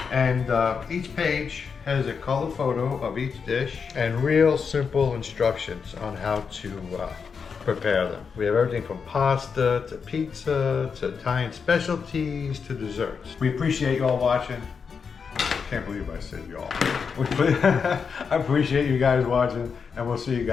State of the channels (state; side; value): quieter; right; 5.9 dB